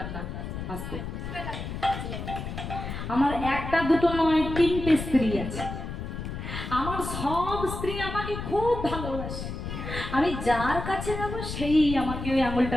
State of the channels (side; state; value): left; noise; rumble, 6 dB below the sound